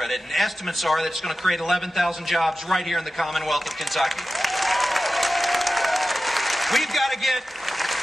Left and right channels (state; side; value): normal; both; correlation 0.94